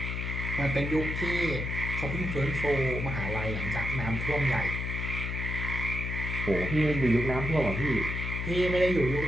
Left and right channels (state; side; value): noise; left; hum, 3 dB below the sound